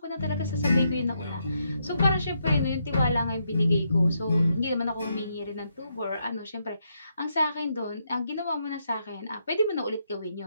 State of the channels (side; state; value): both; inverted; correlation -0.79